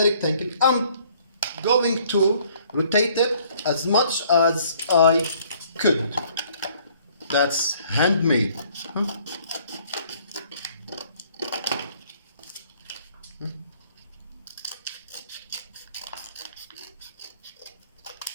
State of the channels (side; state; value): both; inverted; correlation -0.60